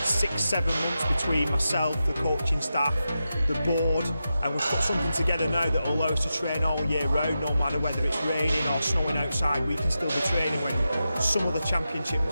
months between myself, the coaching staff, the board, and we've put something together now that will allow us to train all year round, no matter whether it's raining or snowing outside. We can still be training when some of the championship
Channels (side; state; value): both; inverted; correlation -0.90